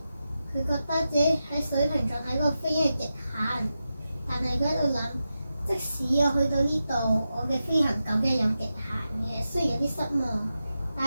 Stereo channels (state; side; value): inverted; both; correlation -0.91